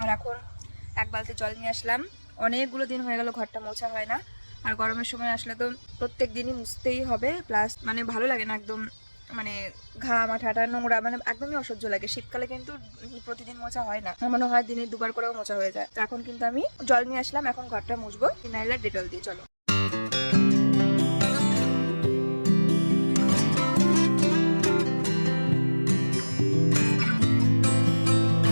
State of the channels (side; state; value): both; inverted; correlation -1.00